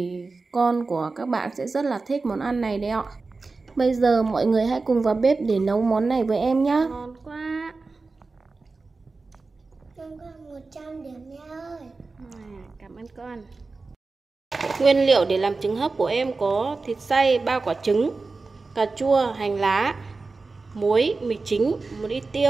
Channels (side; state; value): left; quieter; 3.9 dB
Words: con của các bạn sẽ rất là thích món ăn này đấy ạ. Bây giờ mọi người hãy cùng vào bếp để nấu món này với em nhé. Ngon quá. Con có 100 điểm mẹ ơi. Cảm ơn con. Nguyên liệu để làm trứng hấp của em có thịt xay 3 quả trứng, cà chua, hành lá, muối, mì chính, một ít